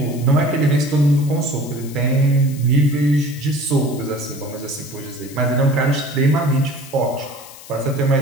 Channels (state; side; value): noise; left; hiss, 18 dB below the sound